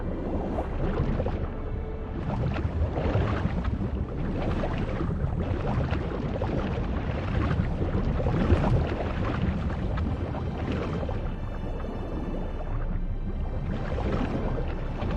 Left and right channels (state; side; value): identical; both; correlation 1.00